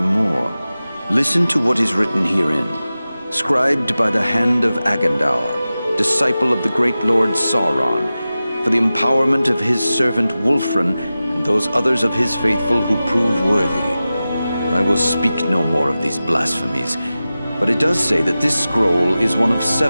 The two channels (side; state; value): both; inverted; correlation -0.95